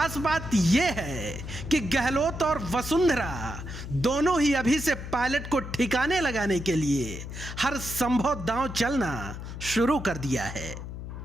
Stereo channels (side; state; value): left; noise; hum, 9 dB below the sound